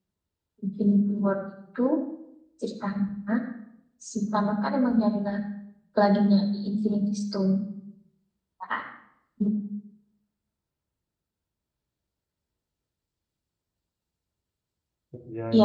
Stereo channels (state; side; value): identical; both; correlation 1.00